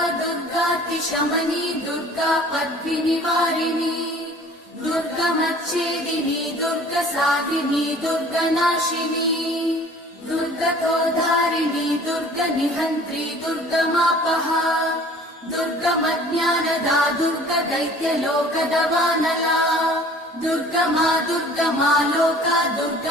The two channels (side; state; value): both; normal; correlation 0.49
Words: दुर्गातिशमनी दुर्गा पद्विनिवारिणी दुर्गमच्छेदिनी दुर्गसाधिनी दुर्गनाशिनी दुर्गतोद्धारिणी दुर्गनिहन्त्री दुर्गमापहा दुर्गमज्ञानदा दुर्गदैत्यलोकदवानला दुर्गमा दुर्गमा लोका